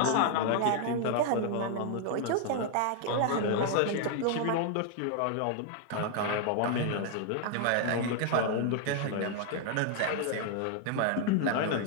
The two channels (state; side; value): different; both; correlation 0.00